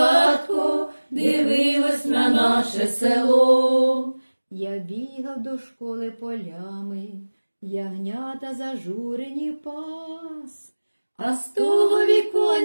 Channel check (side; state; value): both; inverted; correlation -1.00